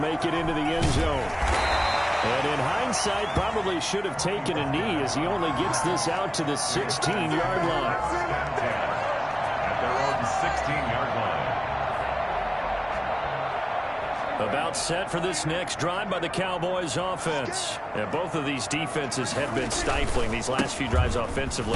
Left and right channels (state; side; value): identical; both; correlation 1.00